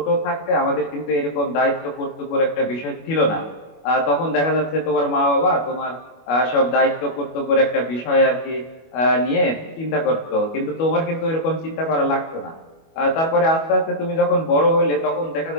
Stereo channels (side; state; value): right; late; 25 ms